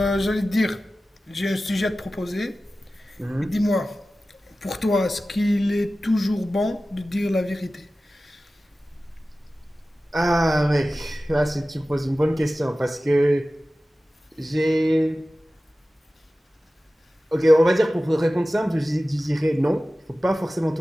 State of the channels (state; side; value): normal; both; correlation 0.95